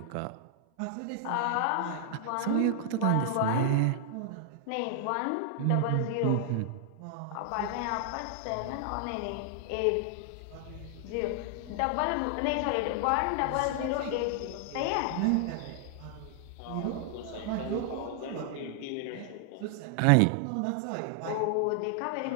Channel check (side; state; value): both; different; correlation 0.00